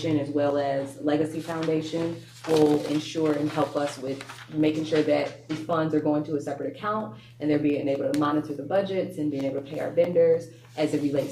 as well as Legacy Foundation, will ensure and help us with making sure that these funds are going to a separate account and they're being able to monitor the budgets and being able to pay our vendors as it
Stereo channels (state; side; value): identical; both; correlation 1.00